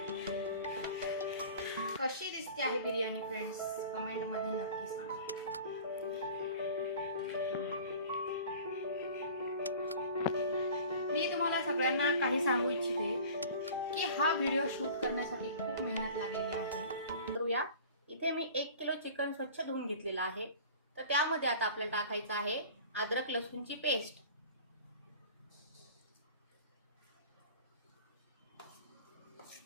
कशी दिसते आहे बिर्याणी फ्रेंड्स, कमेंट मध्ये नक्की सांगा। मी तुम्हाला सगळ्यांना काही सांगू इच्छिते की हा व्हिडिओ शूट करण्यासाठी खूप मेहनत लागलेली आहे। करूया, इथे मी 1 किलो चिकन स्वच्छ धुवून घेतलेला आहे। तर त्यामध्ये आता आपल्याला टाकायचं आहे अद्रक लसूणची पेस्ट,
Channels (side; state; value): both; inverted; correlation -0.42